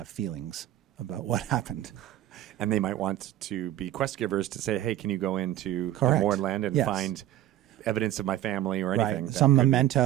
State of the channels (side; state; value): left; quieter; 13.1 dB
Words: feelings about what happened. And they might want to be quest givers to say, hey, can you go into the Correct. Mournland and Yes. find evidence of my family or anything. Right. Some